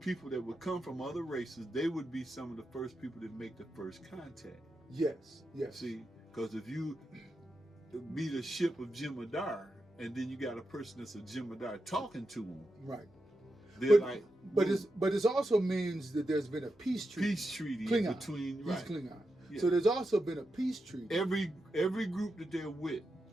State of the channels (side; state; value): both; normal; correlation 0.88